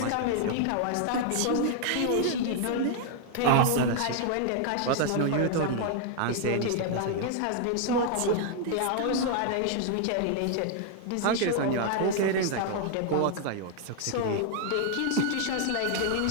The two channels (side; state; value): both; different; correlation 0.00